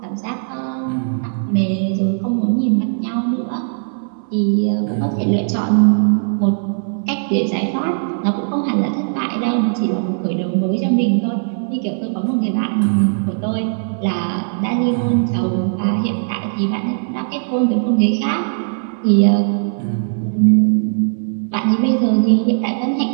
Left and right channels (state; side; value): silent; left; digital silence